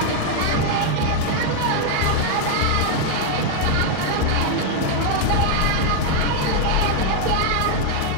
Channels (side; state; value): both; different; correlation 0.00